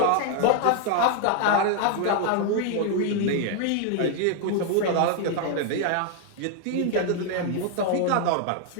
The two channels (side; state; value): both; different; correlation 0.00